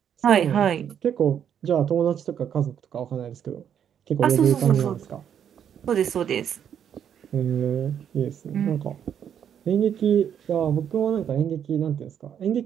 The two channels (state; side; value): quieter; left; 8.8 dB